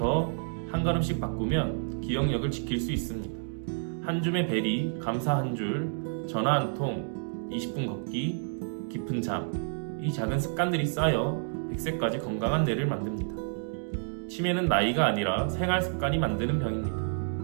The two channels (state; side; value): silent; left; digital silence